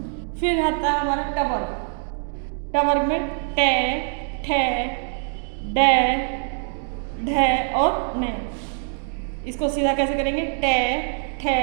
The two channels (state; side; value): silent; left; 60 dB below the other